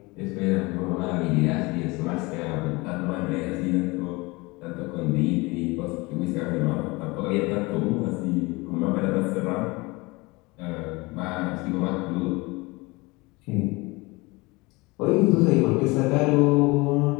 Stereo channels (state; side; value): quieter; right; 24.3 dB